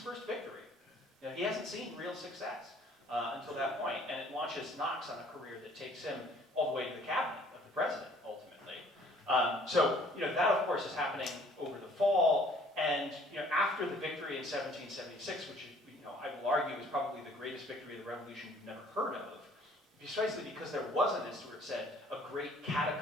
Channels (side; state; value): both; normal; correlation 0.57